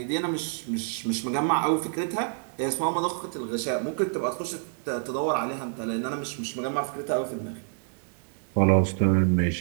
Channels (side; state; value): left; silent; 58 dB below the other